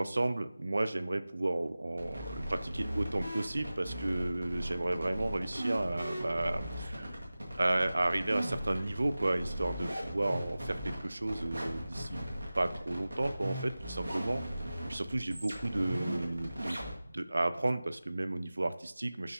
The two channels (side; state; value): both; inverted; correlation -0.97